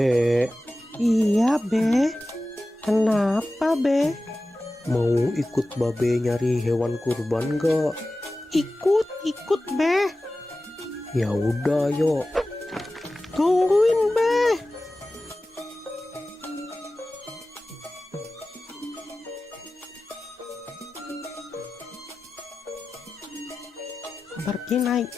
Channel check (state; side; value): normal; both; correlation 0.95